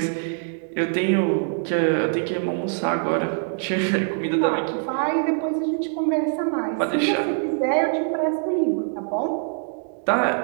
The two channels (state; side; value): silent; left; 63 dB below the other